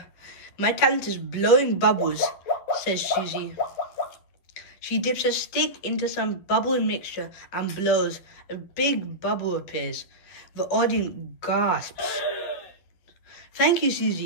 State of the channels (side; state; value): right; late; 11 ms